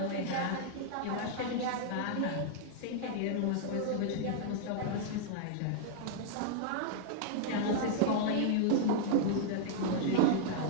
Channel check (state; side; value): different; both; correlation -0.01